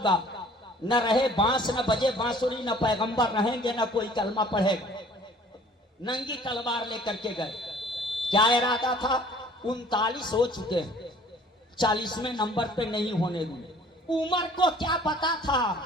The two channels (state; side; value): normal; both; correlation 0.52